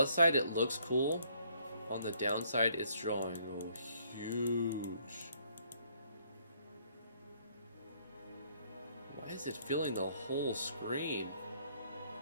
side, it looks cool. On the downside, it's drawing huge. Why is it filling the whole screen?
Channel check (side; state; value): both; inverted; correlation -0.66